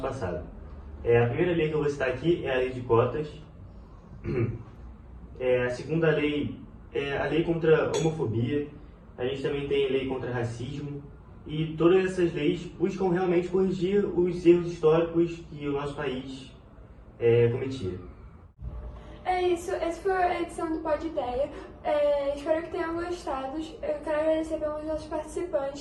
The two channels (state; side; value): identical; both; correlation 1.00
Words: passado. A primeira lei que eu vou citar aqui é a lei de cotas. A segunda lei é a lei contra a homofobia. A gente também tem a lei contra racismo. E todas essas leis buscam realmente corrigir os erros históricos que o nosso país cometia. É isso, essa foi a edição do Pod Ideia. Espero que tenham gostado. Eu quero agradecer pelos nossos